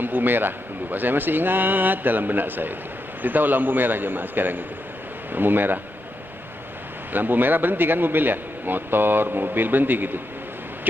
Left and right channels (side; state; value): both; normal; correlation 0.85